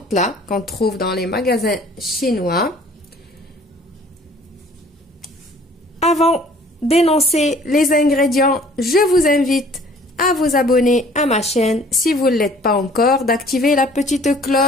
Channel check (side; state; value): both; normal; correlation 0.53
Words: là qu'on trouve dans les magasins chinois. Avant d'énoncer les ingrédients, je vous invite à vous abonner à ma chaîne si vous ne l'êtes pas encore, d'activer la petite